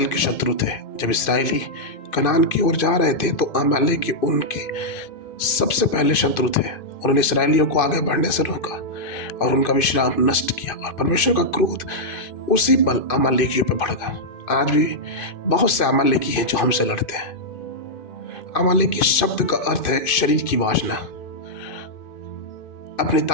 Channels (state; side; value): late; right; 2.5 ms